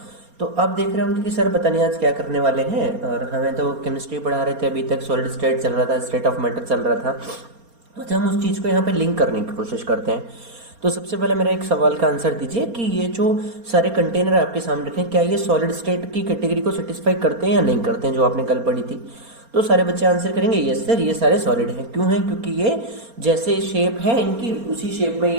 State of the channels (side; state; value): left; late; 4.3 ms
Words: तो आप देख रहे होंगे कि सर पता नहीं आज क्या करने वाले हैं। और हमें तो केमिस्ट्री पढ़ा रहे थे, अभी तक सॉलिड स्टेट चल रहा था, स्टेट ऑफ मैटर चल रहा था। अच्छा, हम उस चीज़ को यहाँ पे लिंक करने की कोशिश करते हैं। तो सबसे पहले मेरा एक सवाल का आंसर दीजिए कि ये जो सारे कंटेनर आपके सामने रखे हैं, क्या ये सॉलिड स्टेट की कैटेगरी को सेटिस्फाई करते हैं या नहीं करते हैं, जो आपने कल पढ़ी थी। तो सारे बच्चे आंसर करेंगे यस सर, ये सारे सॉलिड हैं। क्यों हैं? क्योंकि ये जैसे शेप है इनकी, उसी शेप में